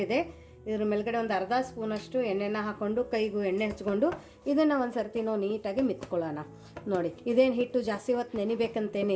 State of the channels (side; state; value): both; identical; correlation 1.00